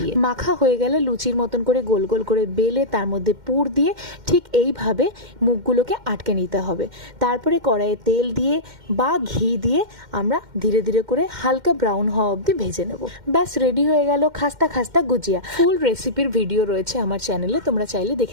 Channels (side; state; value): left; late; 2.1 ms